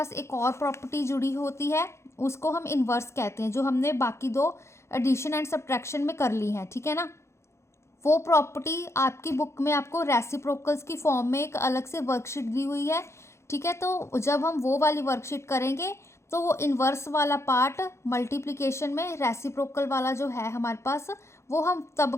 एक और प्रॉपर्टी जुड़ी होती है, उसको हम इन्वर्स कहते हैं, जो हमने बाकी 2 एडिशन एंड सब्ट्रैक्शन में कर ली हैं, ठीक है ना। वो प्रॉपर्टी आपकी बुक में आपको रेसिप्रोकल्स की फॉर्म में एक अलग से वर्कशीट दी हुई है, ठीक है। तो जब हम वो वाली वर्कशीट करेंगे तो वो इन्वर्स वाला पार्ट मल्टीप्लिकेशन में रेसिप्रोकल वाला जो है हमारे पास वो हम तब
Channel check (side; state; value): right; late; 0.13 ms